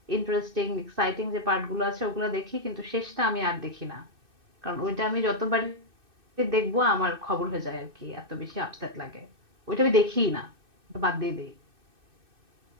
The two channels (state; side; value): late; left; 2.6 ms